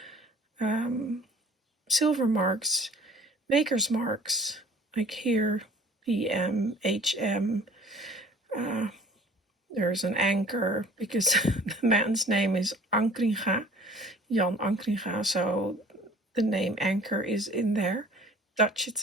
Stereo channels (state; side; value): normal; both; correlation 0.50